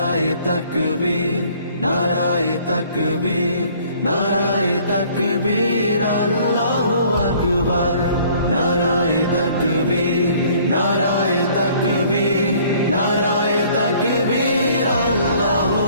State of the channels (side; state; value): both; inverted; correlation -0.57